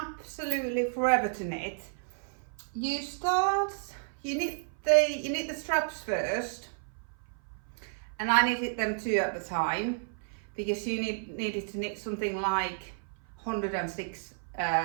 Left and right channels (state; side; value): silent; left; 55 dB below the other